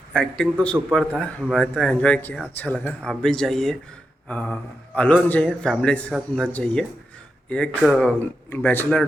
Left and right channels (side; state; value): both; normal; correlation 0.87